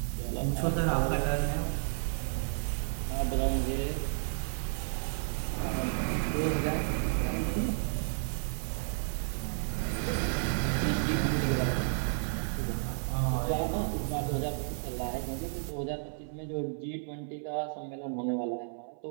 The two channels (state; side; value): silent; left; 56 dB below the other